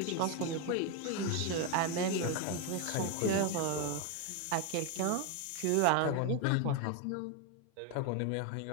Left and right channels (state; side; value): different; both; correlation 0.01